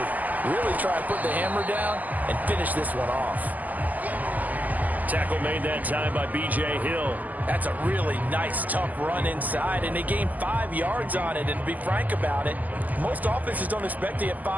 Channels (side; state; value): left; late; 0.081 ms